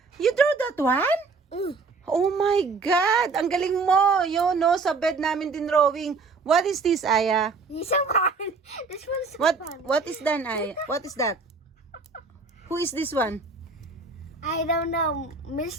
You drew that one? Oh my God! Ang galing mo! Yun, no? Sa bed namin din drawing. What is this, Aya? This one. This one's so fun. What is that, Aya? What is that? Who is this one? I don't know.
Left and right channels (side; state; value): left; quieter; 4.3 dB